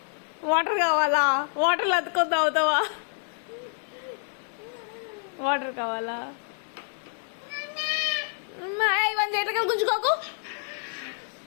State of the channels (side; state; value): right; silent; 60 dB below the other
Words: వాటర్ కావాలా? వాటర్లో అతుకొని తాగుతావా? వాటర్ కావాలా? ఇవన్నీ చేతగా గుంజుకోకు.